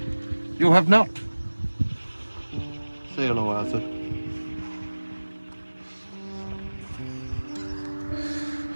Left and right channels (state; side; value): inverted; both; correlation -1.00